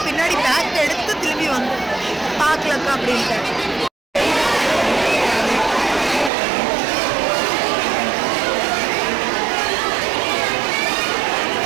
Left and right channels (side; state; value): left; drops out; at 6.3 s